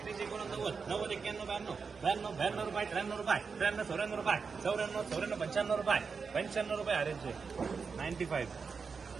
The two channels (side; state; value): left; quieter; 5.3 dB